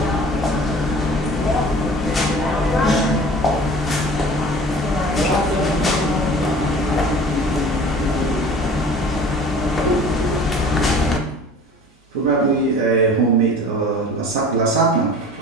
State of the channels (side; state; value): both; normal; correlation 0.44